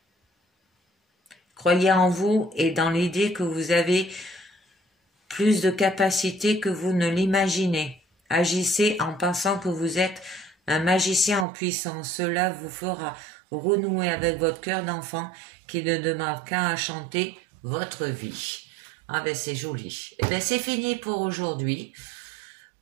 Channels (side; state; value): left; drops out; at 11.5 s